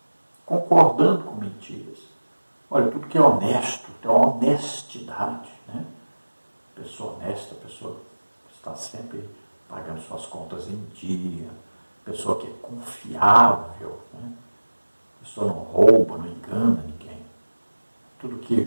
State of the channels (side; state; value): both; inverted; correlation -1.00